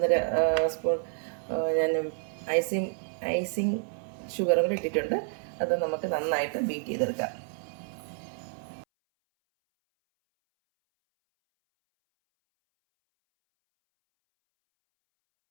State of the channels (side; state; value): left; silent; 58 dB below the other